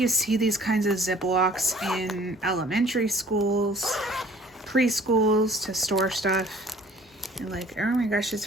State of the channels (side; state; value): both; normal; correlation 0.52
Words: see these kinds of Ziplocs in elementary schools, preschools to store stuff. And oh my gosh, it's